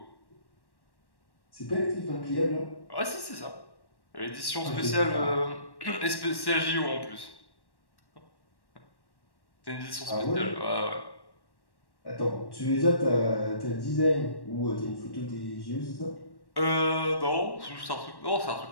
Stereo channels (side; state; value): right; late; 1.1 ms